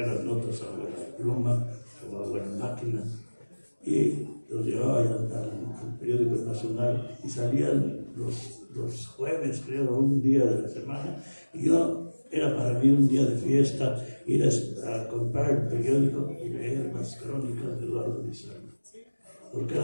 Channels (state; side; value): inverted; both; correlation -1.00